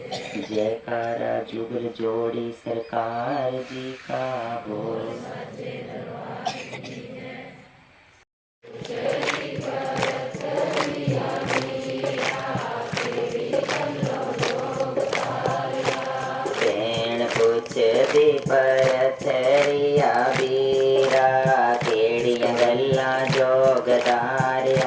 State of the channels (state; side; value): identical; both; correlation 1.00